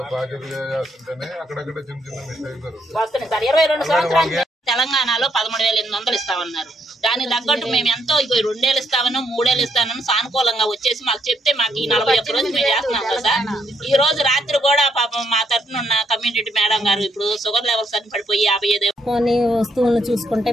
తెలంగాణలో 13,800 ఇస్తామన్నారు. దానికి తగ్గట్టు మేము ఎంతో 2 ఏళ్ళు ఇస్తామని 3 ఏళ్ళు ఇస్తామని సానుకూలంగా వచ్చేసి మాకు చెప్తే మాకు ఈ 41 రోజులు మేము చేస్తున్నాం కదా. ఈ రోజు రాత్రి కూడా పాపం మా తరఫున ఉన్న కమ్యూనిటీ మేడం గారు ఇప్పుడు షుగర్ లెవెల్స్ అని పడిపోయి 55 వస్తువులను చూసుకుంటే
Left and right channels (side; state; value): both; normal; correlation 0.74